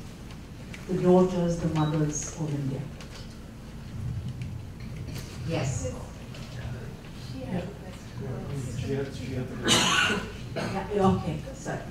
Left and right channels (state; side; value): identical; both; correlation 1.00